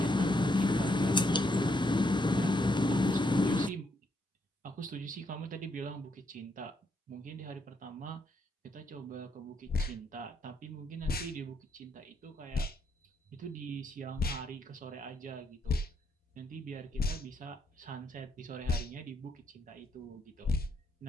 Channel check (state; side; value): normal; both; correlation 0.76